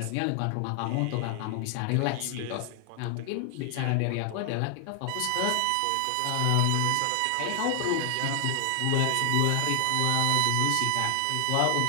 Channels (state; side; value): different; both; correlation 0.00